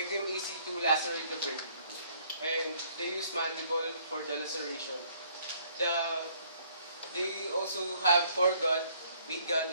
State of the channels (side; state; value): both; inverted; correlation -0.63